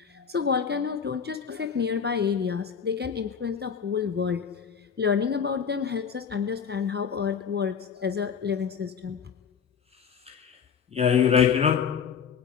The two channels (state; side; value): quieter; right; 6.9 dB